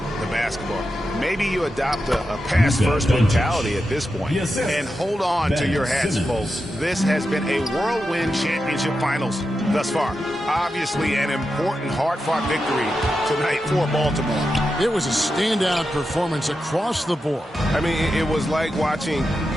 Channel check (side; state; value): both; normal; correlation 0.89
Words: the basketball. Maybe you adopt a pass-first mentality at this point and hold on to your hats, folks. This has been a whirlwind championship finals thus far. Obviously an important hard-fought victory tonight for Baltimore. It was a standout performance across the board. I mean, it was like watching